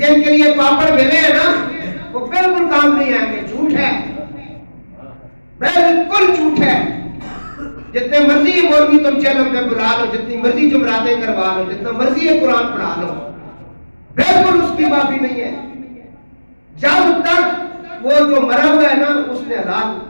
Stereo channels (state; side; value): inverted; both; correlation -1.00